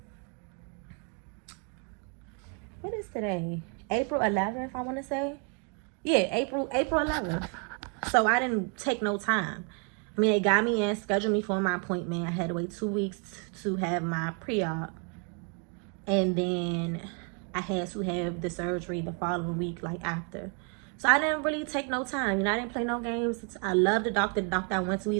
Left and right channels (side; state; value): left; quieter; 38.5 dB